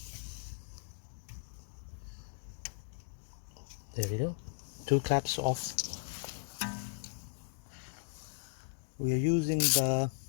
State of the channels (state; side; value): silent; right; digital silence